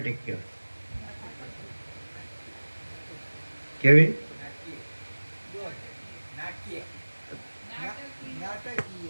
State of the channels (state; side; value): inverted; both; correlation -1.00